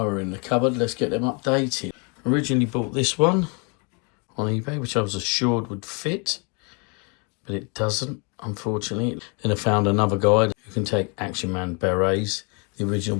we're in the cupboard, let's get them updated. Originally bought this one on eBay, which I was assured would fit, but it doesn't, unfortunately. Then I found another guide who can take Action Man berets, the original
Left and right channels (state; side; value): quieter; right; 33.8 dB